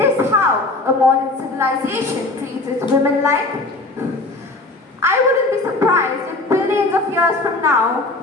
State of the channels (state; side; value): quieter; right; 3.1 dB